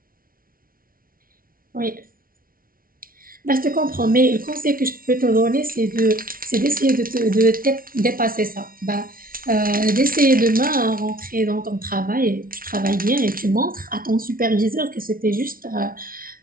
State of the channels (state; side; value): late; left; 0.42 ms